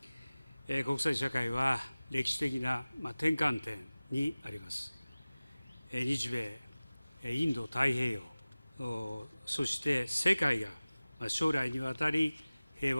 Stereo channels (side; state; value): both; inverted; correlation -0.98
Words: た。国際社会は歴史的な転換点にあります。日米、インド太平洋、そして世界が将来にわたり平